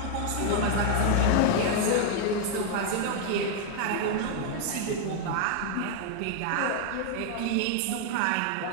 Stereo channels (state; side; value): different; both; correlation 0.00